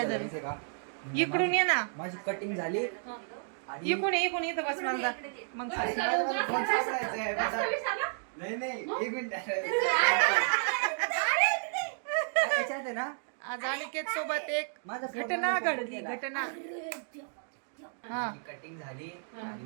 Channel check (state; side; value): silent; left; digital silence